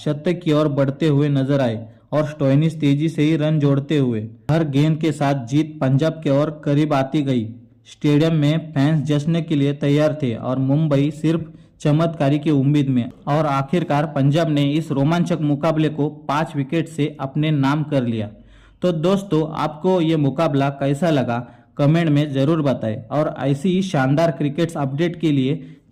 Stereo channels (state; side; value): identical; both; correlation 1.00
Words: की ओर बढ़ते हुए नजर आए और स्टोइनिस तेजी से ही रन जोड़ते हुए। हर गेंद के साथ जीत पंजाब के ओर करीब आती गई। स्टेडियम में फैंस जश्न के लिए तैयार थे और मुंबई सिर्फ चमत्कारी की उम्मीद में। और आखिरकार पंजाब ने इस रोमांचक मुकाबले को 5 विकेट से अपने नाम कर लिया। तो दोस्तों, आपको ये मुकाबला कैसा लगा कमेंट में जरूर बताएं और ऐसी ही शानदार क्रिकेट अपडेट के लिए